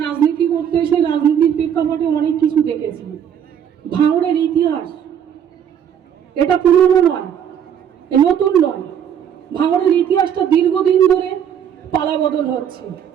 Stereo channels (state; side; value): quieter; left; 8.9 dB